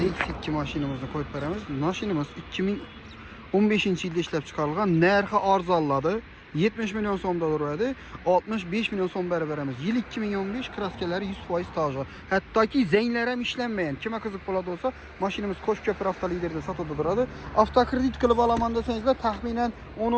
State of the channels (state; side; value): identical; both; correlation 1.00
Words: 2 mashinamizni qo'yib beramiz. Mashinamiz 2015-yilda ishlab chiqarilgan, narxi arzonladi. 70 milyon so'mda turadi. 65 milyon so'm beramiz. Yil 2015, kraskalari 100% tajı. Hattoki zenglar ham ishlanmagan. Kimga qiziq bo'ladi bo'lsa, mashinamiz Qo'shko'p avtoliderda sotuvda turadi. Avtokredit qilib olaman desangizlar, taxminan